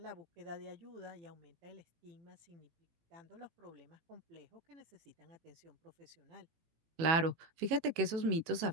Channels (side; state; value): left; late; 18 ms